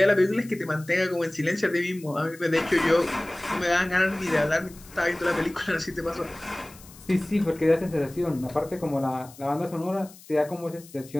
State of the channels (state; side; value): noise; left; hiss, 21 dB below the sound